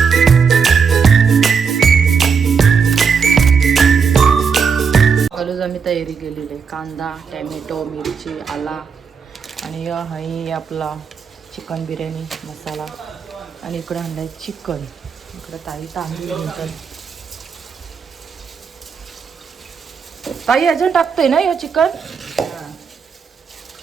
हळूच आम्ही तयारी केलेली आहे. कांदा, टॅमॅटो, मिरची, आला आणि हा आपला चिकन बिर्याणी मसाला. आणि इकडं आणलाय चिकन. इकडं ताई तांदूळ घेतात. ताई अजून टाकतोय ना हे चिकन.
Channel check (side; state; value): left; quieter; 6.1 dB